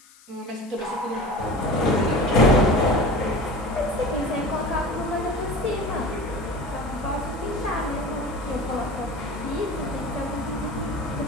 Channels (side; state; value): left; noise; hiss, 25 dB below the sound